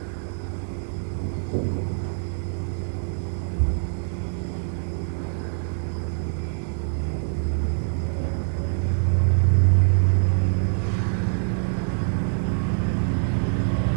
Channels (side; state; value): left; silent; digital silence